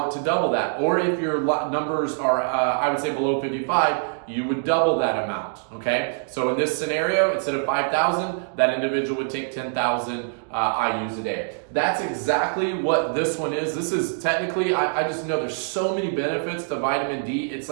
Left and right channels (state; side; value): silent; left; digital silence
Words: to double that. Or if your numbers are, I would say, below 55, you would double that amount, okay? So in this scenario, instead of 5,000, that individual would take 10,000 IUs a day. That's exactly what this one is. This is technically, I just know there's so many benefits to vitamin D. It's